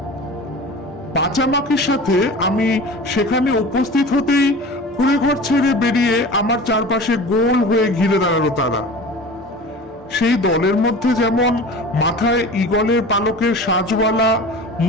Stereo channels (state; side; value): normal; both; correlation 0.37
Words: পাচামাকির সাথে আমি সেখানে উপস্থিত হতেই কুড়ে ঘর ছেড়ে বেরিয়ে আমার চারপাশে গোল হয়ে ঘিরে দাঁড়ালো তারা। সেই দলের মধ্যে যেমন মাথায় ঈগলের পালকের সাজওয়ালা,